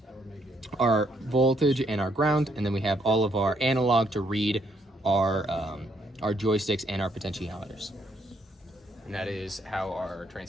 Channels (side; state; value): both; normal; correlation 0.72